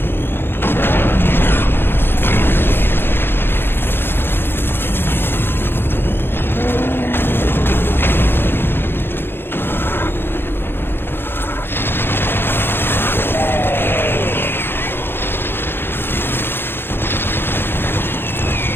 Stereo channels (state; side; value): late; right; 0.10 ms